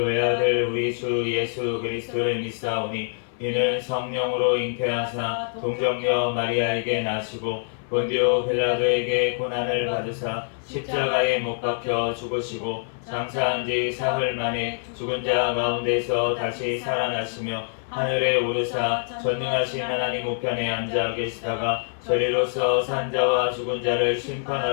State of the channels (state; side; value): silent; right; 59 dB below the other